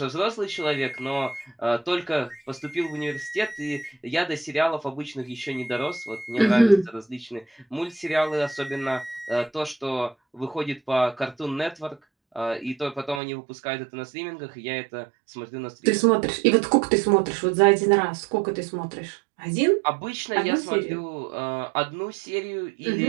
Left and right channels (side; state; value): left; drops out; at 13.2 s